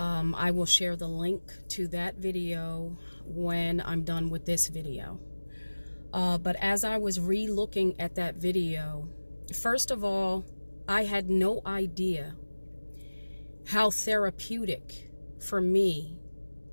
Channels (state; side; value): inverted; both; correlation -1.00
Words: will share the link to that video when I'm done with this video. But as I was re-looking at that video, first of all, I had no idea how therapeutic for me